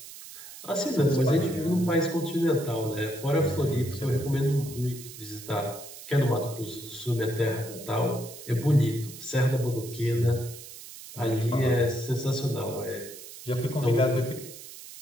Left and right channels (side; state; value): right; noise; hiss, 14 dB below the sound